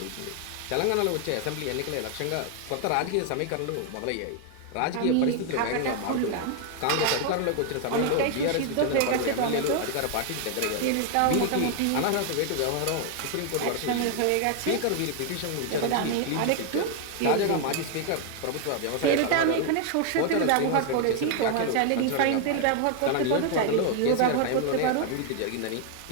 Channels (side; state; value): both; different; correlation 0.00